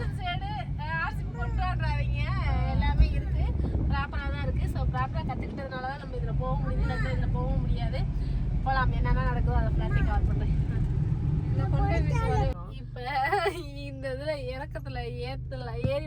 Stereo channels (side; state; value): both; identical; correlation 1.00